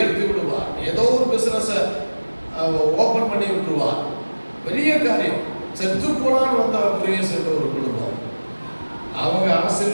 விடுவார். ஏதோ ஒரு பிசினஸ் ஓபன் பண்ணி விட்டுருவார். பெரிய காரியம். செத்து போனான்னு வந்த பிரியஸ் என்ற ஒரு குடும்பம், அவங்க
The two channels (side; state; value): both; inverted; correlation -1.00